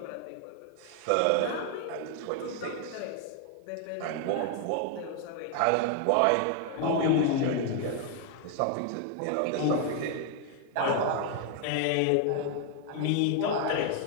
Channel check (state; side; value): different; both; correlation 0.00